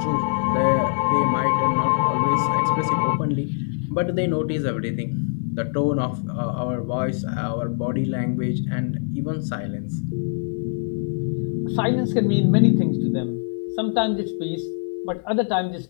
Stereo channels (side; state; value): right; silent; digital silence